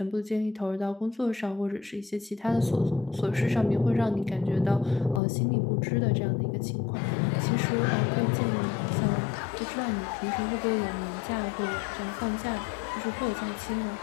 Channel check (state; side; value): drops out; right; at 5.2 s